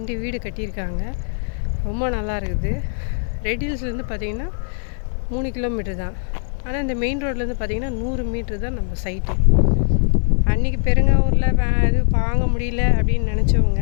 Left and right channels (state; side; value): silent; right; digital silence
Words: வீடு கட்டியிருக்காங்க, ரொம்ப நல்லா இருக்குது. ரெடில்ஸ்லேருந்து பார்த்திங்கன்னா 3 கிலோமீட்டர் தான். ஆனால் இந்த மெயின் ரோட்லேருந்து பார்த்திங்கன்னா 100 மீட்ரு தான் நம்ம சைட்டு. அன்றைக்கி பெருங்காவூரில் இது வாங்க முடியல அப்படின்னு நினச்சவங்க